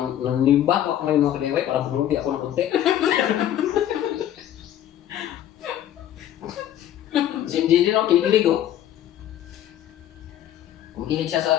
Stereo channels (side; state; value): right; quieter; 11.5 dB